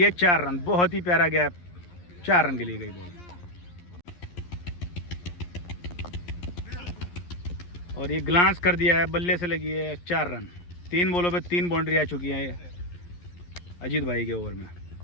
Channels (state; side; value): late; right; 11 ms